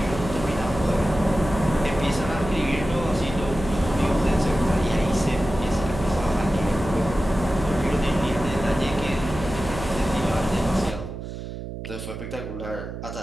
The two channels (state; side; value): noise; right; hum, 8 dB below the sound